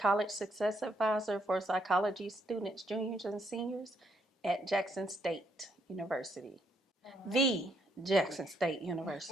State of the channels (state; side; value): normal; both; correlation 0.74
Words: Success Advisor for psychology students, juniors, and seniors at Jackson State University. The Jackson State